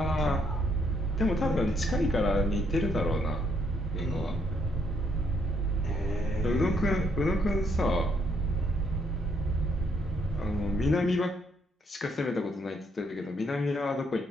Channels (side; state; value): both; normal; correlation 0.72